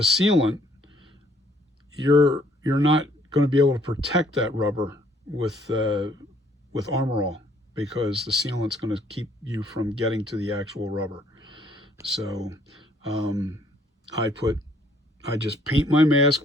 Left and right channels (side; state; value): both; normal; correlation 0.64